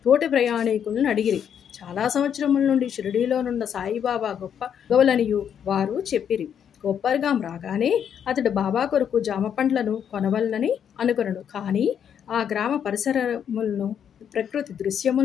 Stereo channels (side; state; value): right; quieter; 8.5 dB